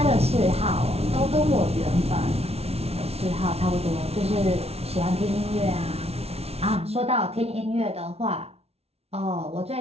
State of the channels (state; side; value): late; left; 0.30 ms